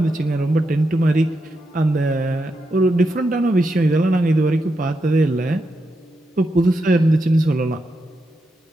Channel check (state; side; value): normal; both; correlation 0.85